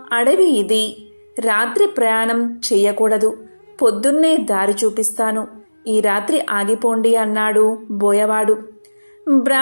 అడవి ఇది. రాత్రి ప్రయాణం చెయ్యకూడదు. పొద్దున్నే దారి చూపిస్తాను. ఈ రాత్రి ఆగిపోండి అన్నాడు బోయవాడు.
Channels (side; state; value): both; inverted; correlation -1.00